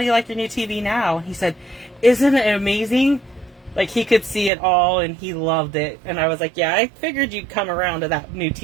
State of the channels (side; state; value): left; drops out; at 4.5 s